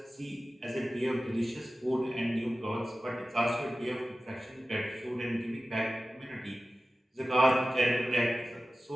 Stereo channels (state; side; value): normal; both; correlation 0.95